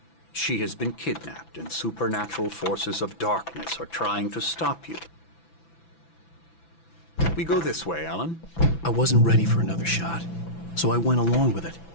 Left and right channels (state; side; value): late; right; 6.0 ms